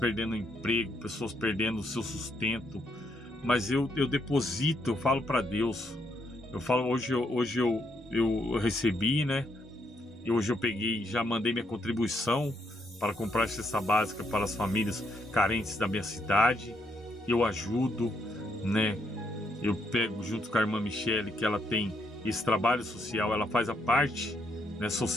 emprego, pessoas perdendo o seu sustento. Mas eu deposito, eu falo para Deus. Eu falo, hoje eu recebi, né? E hoje eu peguei, já mandei minha contribuição para comprar cesta básica para as famílias carentes da minha cidade. Eu ajudo, né? Eu pego junto com a irmã Michele, que ela tem esse trabalho social, ela faz a parte, né,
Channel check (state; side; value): normal; both; correlation 0.75